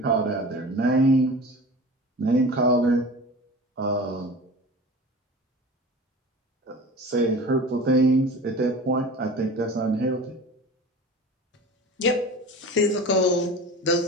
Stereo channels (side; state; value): both; normal; correlation 0.36